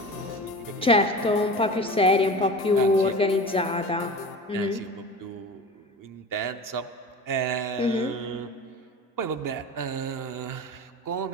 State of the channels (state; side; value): normal; both; correlation 0.34